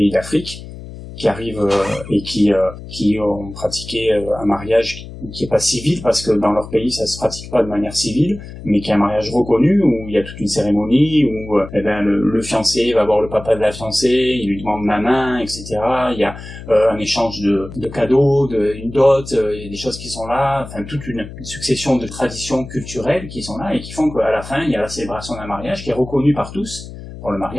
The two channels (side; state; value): left; noise; hum, 13 dB below the sound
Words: d'Afrique, qui arrivent et qui ont pratiqué un mariage qui est pas civil, parce que dans leur pays ça se pratique pas de manière civile, mais qui est un mariage reconnu, où il y a toute une cérémonie, où le fiancé va voir le papa de la fiancée, il lui demande la main, etc. Il y a un échange de cadeaux, une dot, il y a des choses qui sont là, enfin toute une succession de traditions culturelles qui sont là et qui font qu'à la fin il y a la célébration d'un mariage qui est reconnu par tous. Pour le